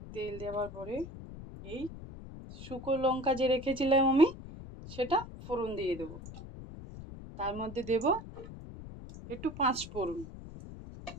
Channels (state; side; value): noise; left; rumble, 13 dB below the sound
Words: তেল দেওয়ার পরে এই শুকনো লঙ্কা যে রেখেছিলাম আমি, সেটা ফোড়ন দিয়ে দেবো। তার মধ্যে দেব একটু 5 ফোড়ন।